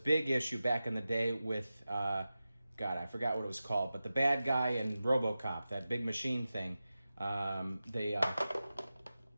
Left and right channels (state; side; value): inverted; both; correlation -0.94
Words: issue back in the day with, God, I forgot what it was called, but the bad guy in RoboCop, that big machine thing,